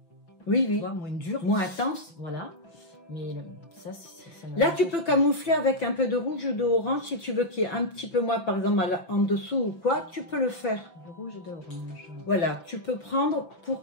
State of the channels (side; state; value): right; late; 5.9 ms